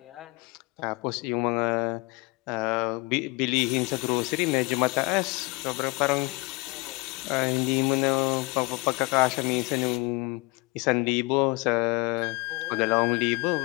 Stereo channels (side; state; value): right; quieter; 25.5 dB